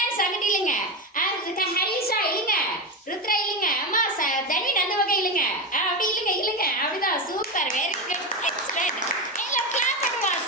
அங்கிட்டு இழுங்க. ஹரிஷா இழுங்க. ருத்ரா இழுங்க. அம்மா தனின் அந்த பக்கம் இழுங்க. அப்படி இழுங்க இழுங்க. அப்படிதான் சூப்பர் வெரி குட் எக்ஸலென்ட். எல்லாம் கிளாப் பண்ணுவா.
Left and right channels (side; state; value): both; normal; correlation 0.15